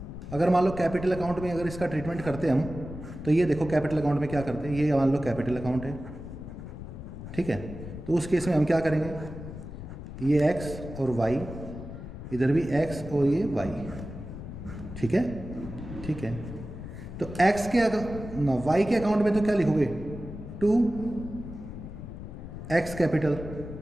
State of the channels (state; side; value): noise; left; rumble, 10 dB below the sound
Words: अगर मान लो कैपिटल अकाउंट में अगर इसका ट्रीटमेंट करते हम, तो ये देखो कैपिटल अकाउंट में क्या करते हैं, ये मान लो कैपिटल अकाउंट है। ठीक है, तो उस केस में हम क्या करेंगे, ये x और y, इधर भी x और ये y। ठीक है, ठीक है, तो x के ना y के अकाउंट में तो क्या लिखोगे, 2x कैपिटल